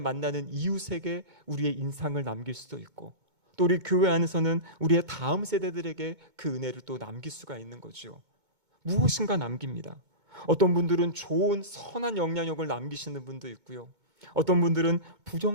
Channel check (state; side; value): late; left; 2.2 ms